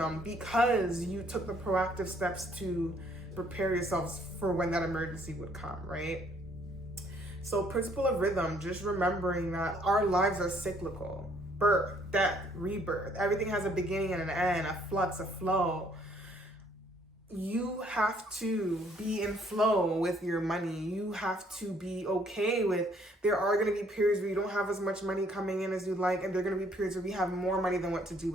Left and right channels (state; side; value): normal; both; correlation 0.64